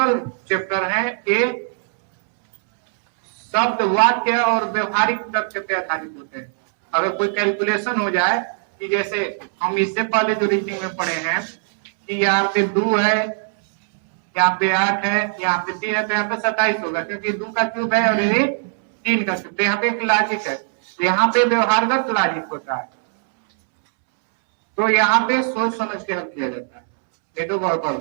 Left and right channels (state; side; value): silent; left; 66 dB below the other